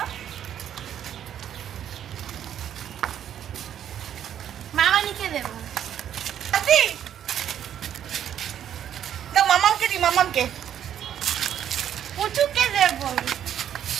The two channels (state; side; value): quieter; left; 10.0 dB